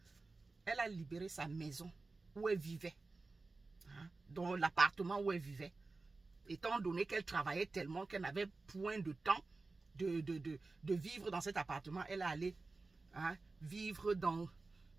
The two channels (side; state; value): left; quieter; 3.6 dB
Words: Elle a libéré sa maison où elle vivait. Hein? Dans l'appartement où elle vivait. Étant donné qu'elle travaillait tellement qu'elle n'avait point de temps de vivre dans cet appartement, elle est allée, hein, vivre dans